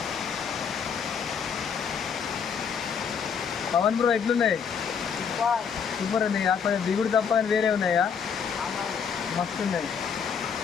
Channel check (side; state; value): right; quieter; 6.8 dB